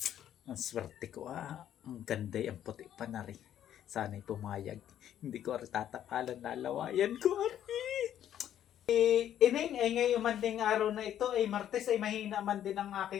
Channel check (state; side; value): quieter; right; 10.8 dB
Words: Ang swerte ko Ang ganda ang puti pa na rin. Sana'y pumayag. Hindi ko rin tatapalan na lawayan ko Ineng, ay ngayon man ding araw na ito ay Martes ay mahina man din ang